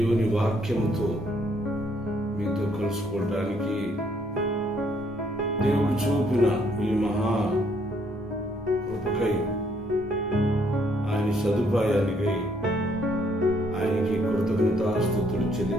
వాక్యముతో మీతో కలుసుకోవటానికి దేవుడు చూపిన ఈ మహా కృపకై, ఆయన సదుపాయానికై ఆయనకి కృతజ్ఞతాస్తుతులు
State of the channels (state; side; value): normal; both; correlation 0.68